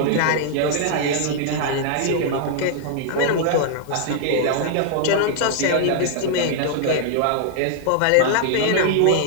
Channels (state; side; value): different; both; correlation -0.01